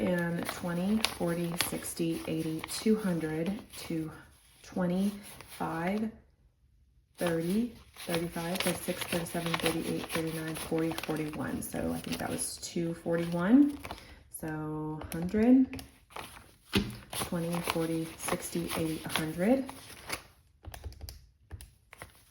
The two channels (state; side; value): identical; both; correlation 1.00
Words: 40, 60, 80, 200, 225, 30, 35, 36, 37, 38, 39, 40, 41. So I think that was 241. So 100, 20, 40, 60, 80, 100.